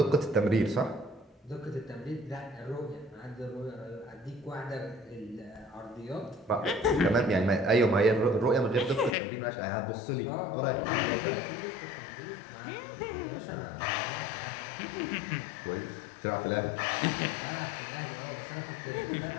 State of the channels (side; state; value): right; drops out; at 9.2 s